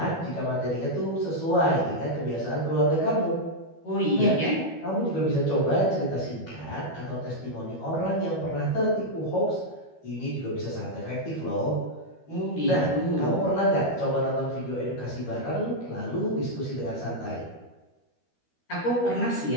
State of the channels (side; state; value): right; late; 12 ms